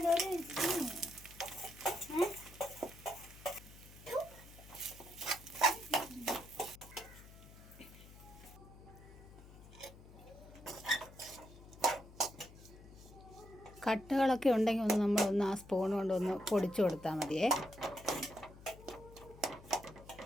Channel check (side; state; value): left; noise; hum, 19 dB below the sound